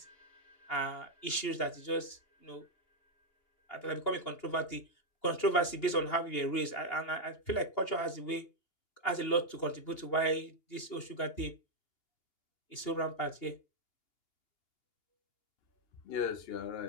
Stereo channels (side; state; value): right; late; 2.8 ms